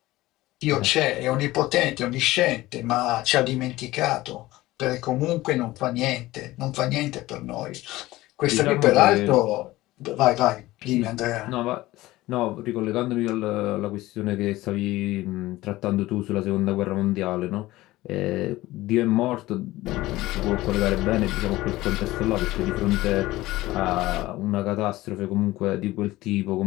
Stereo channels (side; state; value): right; quieter; 17.8 dB